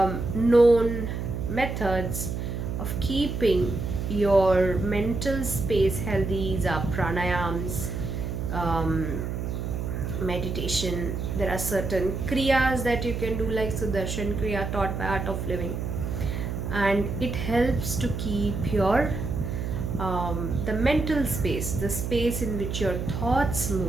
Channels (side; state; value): right; noise; hum, 4 dB below the sound